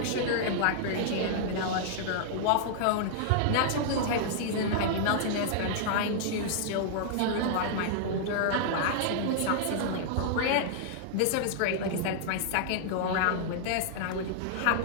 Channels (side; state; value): both; different; correlation -0.01